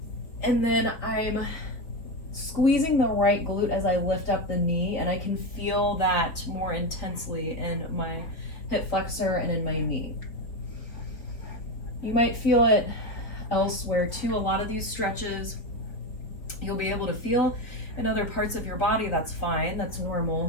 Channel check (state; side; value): late; right; 4.3 ms